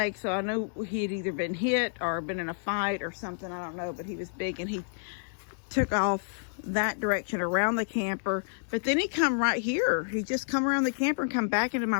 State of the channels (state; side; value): silent; right; digital silence